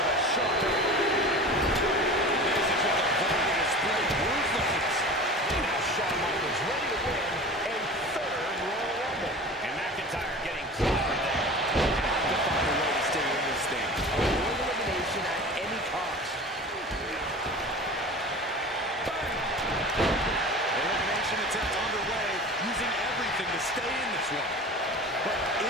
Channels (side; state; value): both; normal; correlation 0.37